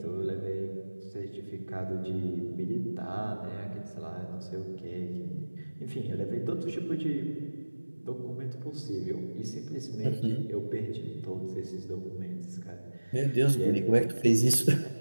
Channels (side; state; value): both; inverted; correlation -1.00